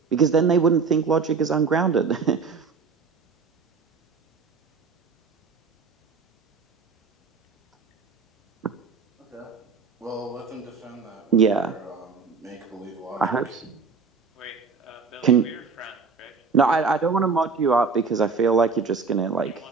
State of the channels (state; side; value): quieter; left; 4.9 dB